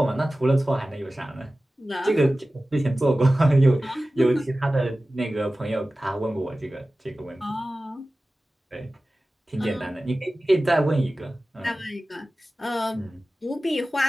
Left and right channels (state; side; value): normal; both; correlation 0.96